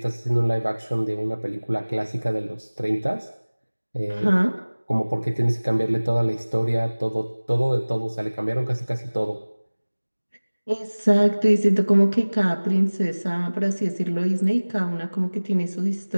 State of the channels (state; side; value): inverted; both; correlation -1.00